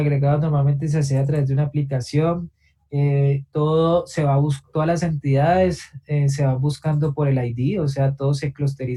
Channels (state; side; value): identical; both; correlation 1.00